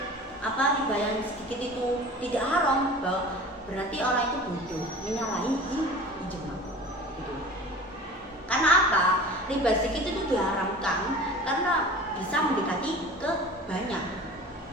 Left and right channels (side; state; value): both; normal; correlation 0.39